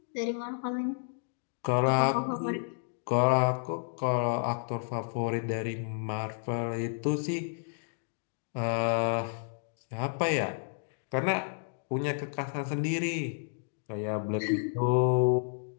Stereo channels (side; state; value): right; silent; digital silence